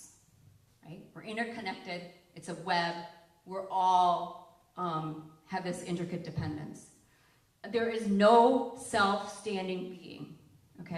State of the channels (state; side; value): identical; both; correlation 1.00